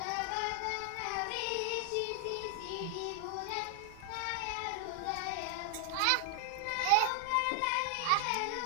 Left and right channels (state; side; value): different; both; correlation 0.00